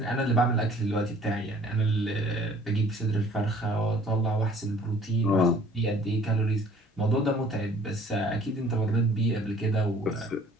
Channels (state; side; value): normal; both; correlation 0.54